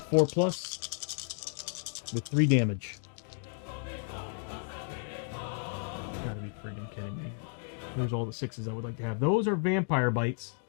4+ with 3 damage. Gotta be friggin' kidding me. There's all the 6s I would like to have. Those are vampire bites.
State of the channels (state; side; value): silent; right; 56 dB below the other